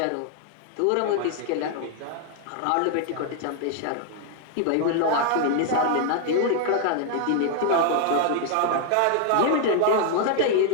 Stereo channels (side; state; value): both; different; correlation 0.00